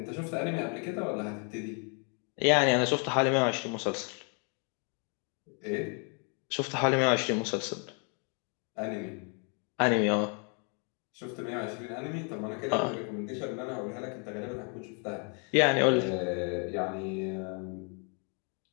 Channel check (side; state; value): right; quieter; 39.1 dB